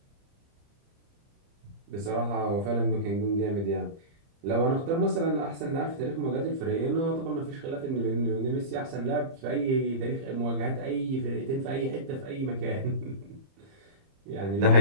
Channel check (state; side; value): late; left; 30 ms